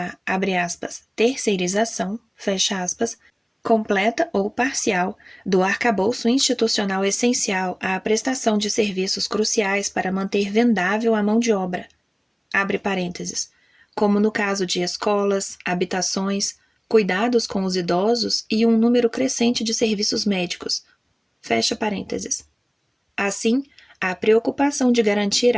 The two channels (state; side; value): identical; both; correlation 1.00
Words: abre aspas, terceirização, fecha aspas, completa ou parcial do arcabouço institucional essencial à prestação de serviços cruciais para manter vendável a mão de obra, abre parênteses, como no caso de escolas, habitações, cuidados com os idosos e um número crescente de serviços médicos, fecha parênteses. Assim, a preocupação de garantir